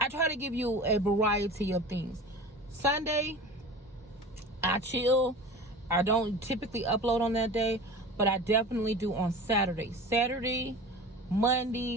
try to give you a variety of things. Sunday, I chill. I don't typically upload on that day, but I definitely do on Saturday. Saturday,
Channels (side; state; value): both; normal; correlation 0.36